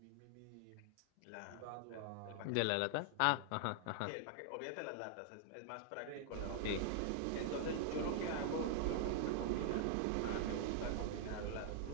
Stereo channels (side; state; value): both; different; correlation -0.01